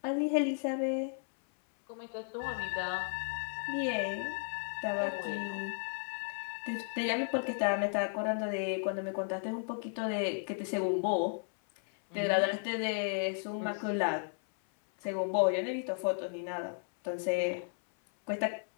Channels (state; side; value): silent; right; 55 dB below the other